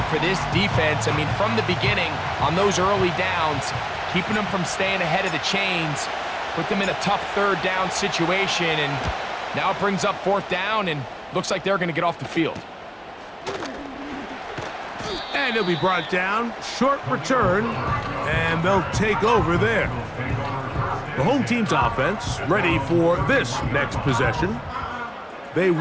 for this defense. I mean, from the beginning, on those early downs, keeping them from staying ahead of the chains, put them in a tough 3rd down situation, and Now it brings up 4th down, and looks like they're going to get off the field. And he'll be brought down. Short return, and they'll take over there. The home team's offense ready for this next possession. They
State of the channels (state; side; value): identical; both; correlation 1.00